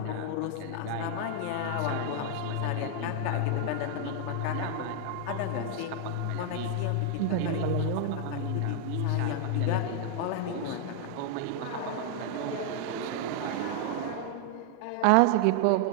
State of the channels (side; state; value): both; different; correlation -0.01